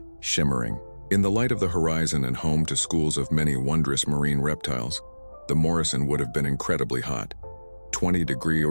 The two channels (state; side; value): inverted; both; correlation -1.00